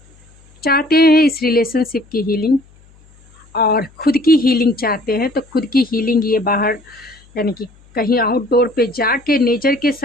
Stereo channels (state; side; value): noise; left; hum, 28 dB below the sound